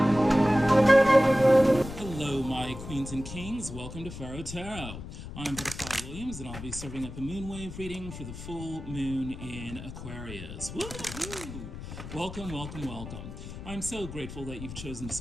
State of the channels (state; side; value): noise; left; rumble, 11 dB below the sound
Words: my queens and kings. Welcome to Pharaoh Tarot. I'm Butterfly Williams, and I'll be serving up a moonwave reading for the full moon in Aquarius. Woo-hoo! Welcome, welcome, welcome. I'm so grateful that you've chosen to